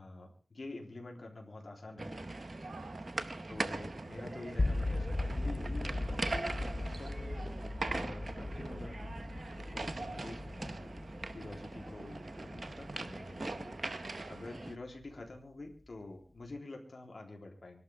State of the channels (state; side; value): normal; both; correlation 0.95